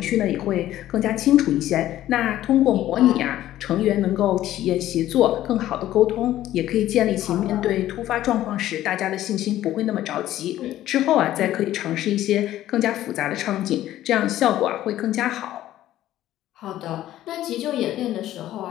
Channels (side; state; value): right; quieter; 13.6 dB